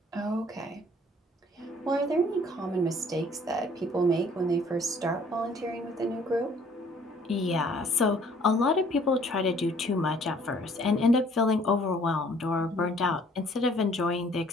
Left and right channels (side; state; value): both; normal; correlation 0.58